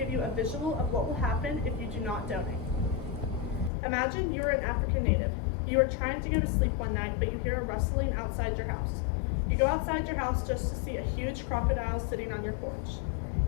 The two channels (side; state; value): right; drops out; at 3.7 s